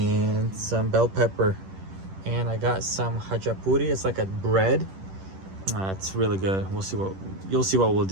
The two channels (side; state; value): left; late; 10 ms